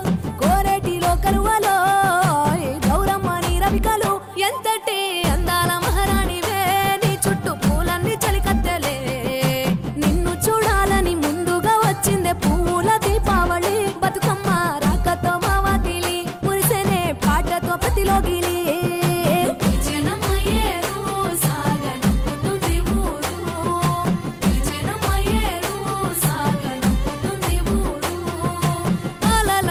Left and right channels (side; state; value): both; identical; correlation 1.00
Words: కోరేటిలో కలువలో గౌరమ్మని రవికలు ఎంతటి అందాల మహారాణివే నీ చుట్టూ పూలన్నీ చలికత్తెలే నిన్ను చూడాలని ముందుగా వచ్చిందే